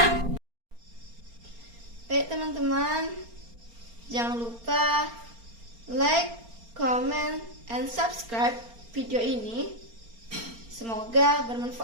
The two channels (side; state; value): left; late; 4.3 ms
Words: Baik teman-teman, jangan lupa like, comment, and subscribe video ini. Semoga